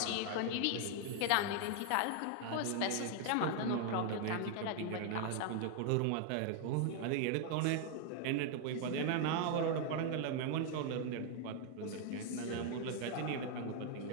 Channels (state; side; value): different; both; correlation 0.00